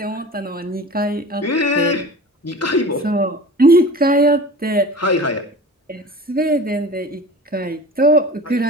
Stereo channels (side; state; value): both; normal; correlation 0.37